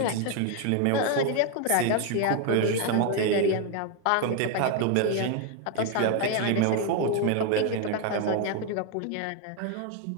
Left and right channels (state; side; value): different; both; correlation 0.01